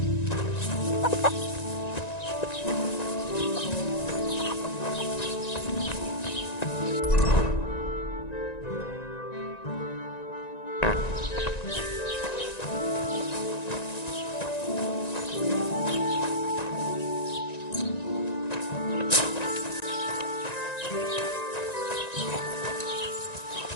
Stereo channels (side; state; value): right; late; 1.9 ms